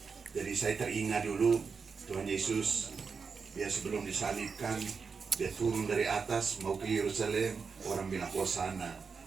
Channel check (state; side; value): quieter; left; 5.4 dB